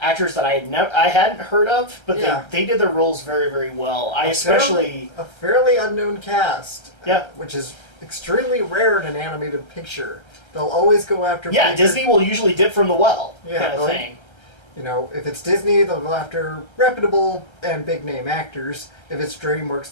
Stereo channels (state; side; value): late; right; 1.3 ms